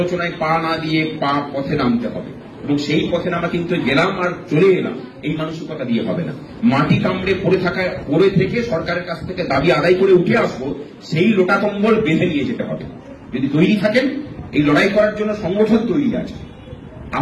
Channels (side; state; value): both; identical; correlation 1.00